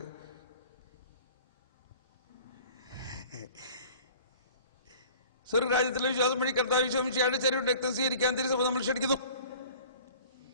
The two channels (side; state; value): both; inverted; correlation -0.47